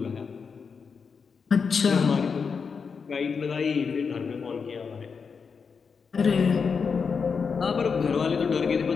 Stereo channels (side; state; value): right; quieter; 5.7 dB